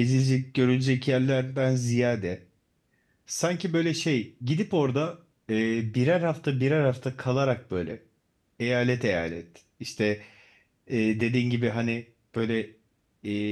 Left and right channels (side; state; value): both; identical; correlation 1.00